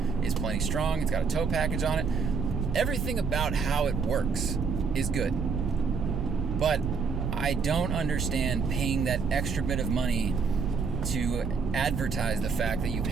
is plenty strong. It's got a tow package on it. Everything about how it works is good. But I don't understand paying that extra bit of money to advertise the fact that you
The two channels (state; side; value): quieter; left; 5.3 dB